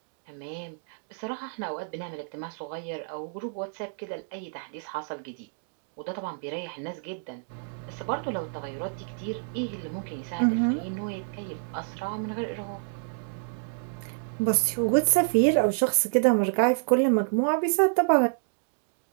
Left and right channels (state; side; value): silent; left; digital silence